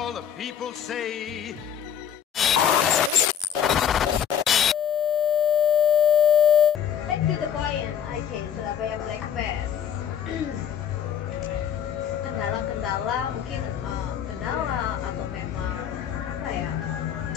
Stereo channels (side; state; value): right; quieter; 8.8 dB